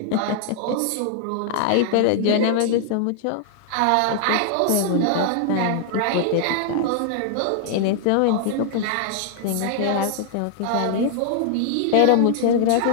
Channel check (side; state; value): both; different; correlation 0.00